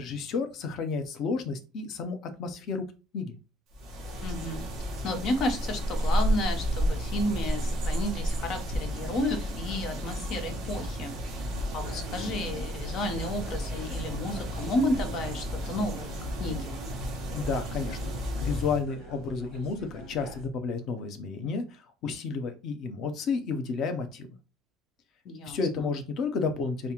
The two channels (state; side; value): normal; both; correlation 0.63